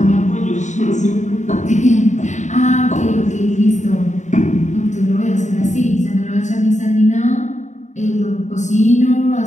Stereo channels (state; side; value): late; right; 0.34 ms